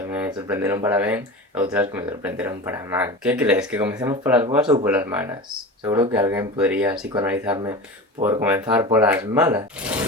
me sorprenderon para ben e outras que me sorprenderon para mal. Que crees? Que comecemos polas boas ou polas malas? Seguro que alguén podría psicoanalizarme por comenzar polas malas.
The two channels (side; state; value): both; normal; correlation 0.31